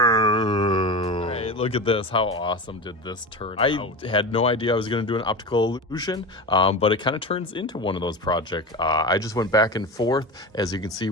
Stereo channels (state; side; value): normal; both; correlation 0.26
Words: Alright, look at this. How awesome did this turn out? I had no idea I was going to do an optical illusion, but it kind of turns into one of those projects. I just went back and forth, as you can see